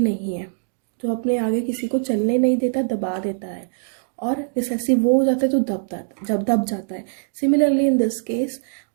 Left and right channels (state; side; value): silent; left; digital silence